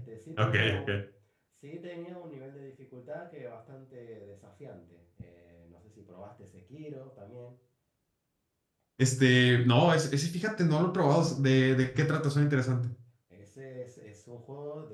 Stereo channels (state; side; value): identical; both; correlation 1.00